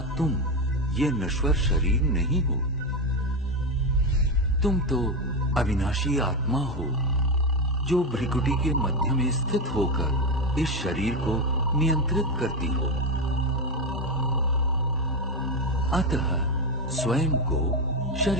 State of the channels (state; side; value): normal; both; correlation 0.12